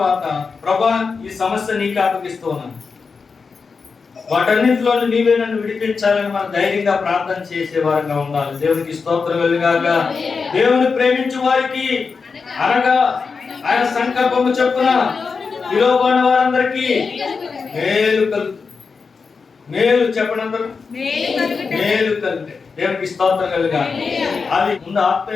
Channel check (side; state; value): right; quieter; 5.0 dB